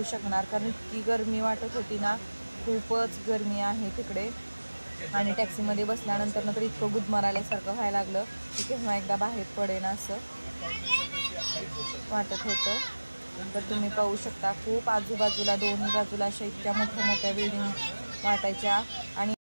शकणार, कारण इतकी गरमी वाटत होती ना, खूपच गरमी आहे तिकडे। आणि टॅक्सीमध्ये बसल्यानंतर तर इतकं गुदमरायल्यासारखं व्हायला लागलं की केव्हा एकदा बाहेर पडेन असं वाटत होतं। तर तुम्ही पाहू शकता खूप आजूबाजूला दोन्ही बाजूला अशा इतक्या मोठ्या बिल्डिंग वाटायच्या आणि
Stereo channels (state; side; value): inverted; both; correlation -1.00